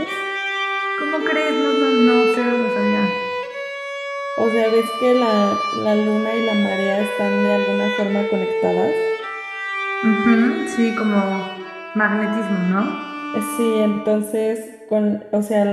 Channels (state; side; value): identical; both; correlation 1.00